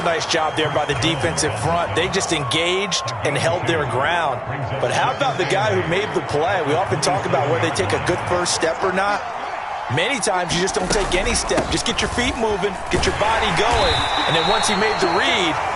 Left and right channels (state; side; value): identical; both; correlation 1.00